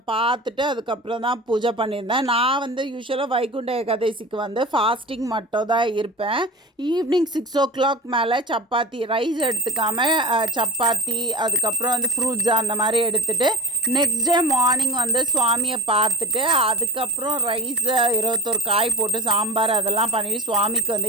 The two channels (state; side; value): normal; both; correlation 0.38